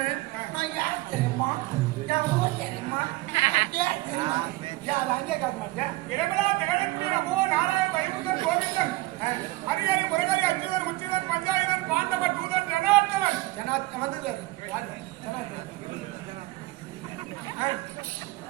நான் யார் தெரியுமா என் ஊர் தெரியுமா என் பேர் தெரியுமா யார் அங்கே காட்ட மாட்டேன். இரவிழா திகழக்கூடிய நமோ நாராயண வைகுந்தன் கோவிந்தன் ஹரிஹரி முருகரி அச்சுதன் உச்சிதன் பஞ்சாயுதன் பாண்டவ தூதன் ஜனார்த்தவன் ஜனாத் வந்தது யாரு ஜனாத்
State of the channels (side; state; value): left; quieter; 20.1 dB